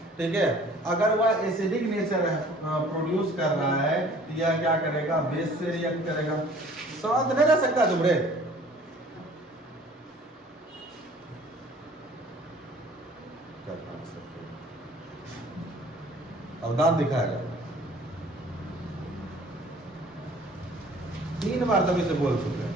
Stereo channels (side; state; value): both; normal; correlation 0.52